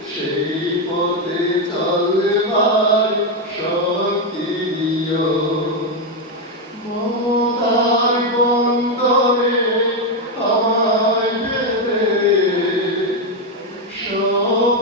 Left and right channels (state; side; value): normal; both; correlation 0.05